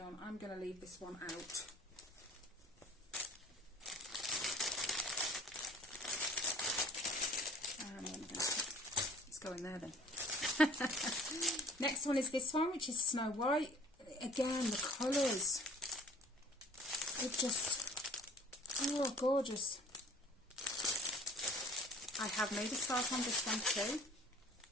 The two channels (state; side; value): normal; both; correlation 0.51